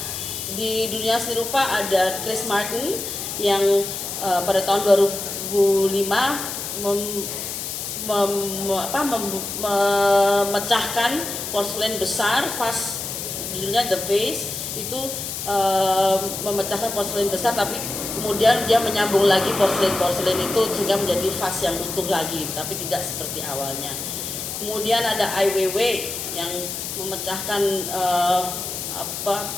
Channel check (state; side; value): noise; left; hiss, 5 dB below the sound